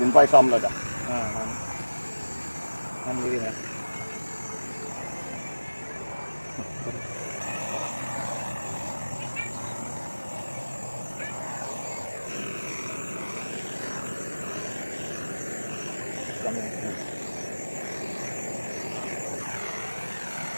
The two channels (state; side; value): inverted; both; correlation -1.00